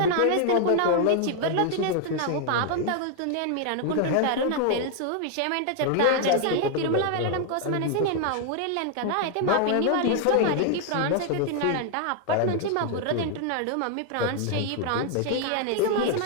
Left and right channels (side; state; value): both; different; correlation 0.00